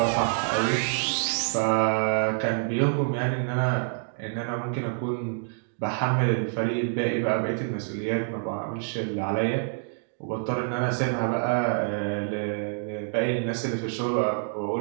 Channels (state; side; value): silent; left; digital silence